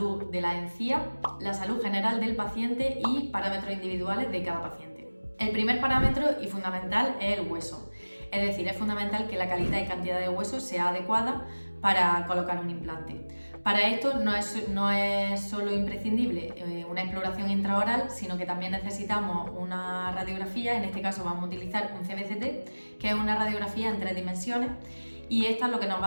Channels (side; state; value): both; inverted; correlation -1.00